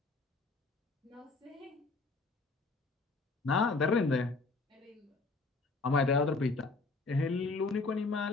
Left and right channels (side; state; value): right; quieter; 3.8 dB